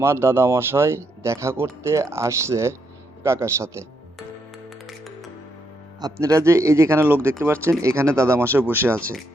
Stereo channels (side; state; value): both; normal; correlation 0.78